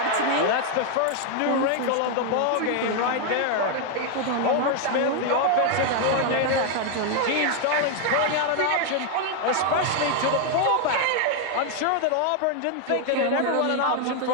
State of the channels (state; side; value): different; both; correlation 0.00